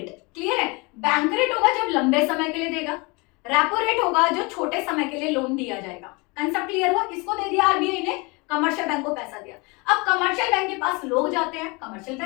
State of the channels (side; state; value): right; quieter; 27.7 dB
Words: क्लियर है। बैंक रेट होगा जब लंबे समय के लिए देगा, रेपो रेट होगा जो छोटे समय के लिए लोन दिया जाएगा। कंसेप्ट क्लियर हुआ? किसको दे दिया आरबीआई ने? कमर्शियल बैंक को पैसा दिया। अब कमर्शियल बैंक के पास लोग जाते हैं, कमर्शियल